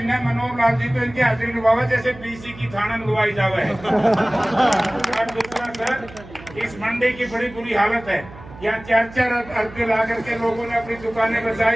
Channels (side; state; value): right; noise; hum, 18 dB below the sound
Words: मनोहर लाल जी तो इनकी हाजिरी निभावे जैसे बीसी की थाना निभाई जावे है। और दूसरा सर, इस मंडी की बड़ी बुरी हालत है, यहाँ 4-4 अरबे ला करके लोगों ने अपनी दुकानें